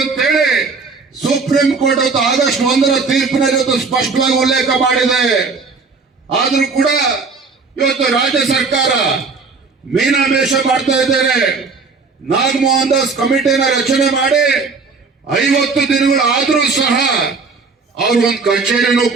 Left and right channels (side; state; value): left; quieter; 4.5 dB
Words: ಅಂತೇಳಿ ಸುಪ್ರೀಂ ಕೋರ್ಟ್ ಆಗಸ್ಟ್ 1ರ ತೀರ್ಪಿನಲ್ಲಿ ಇವತ್ತು ಸ್ಪಷ್ಟವಾಗಿ ಉಲ್ಲೇಖ ಮಾಡಿದೆ. ಆದ್ರೂ ಕೂಡ ಇವತ್ತು ರಾಜ್ಯ ಸರ್ಕಾರ ಮೀನಾಮೇಷ ಮಾಡ್ತಾ ಇದ್ದಾರೆ. ನಾಗಮೋಹನ್ ದಾಸ್ ಕಮಿಟಿನ ರಚನೆ ಮಾಡಿ 50 ದಿನಗಳು ಆದ್ರೂ ಸಹ ಅವ್ರಿಗೊಂದು ಕಚೇರಿನೂ